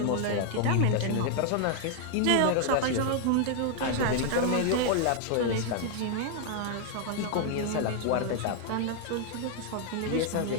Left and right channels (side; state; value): both; different; correlation 0.00